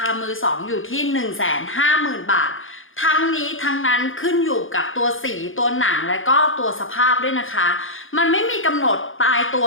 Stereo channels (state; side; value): late; right; 0.58 ms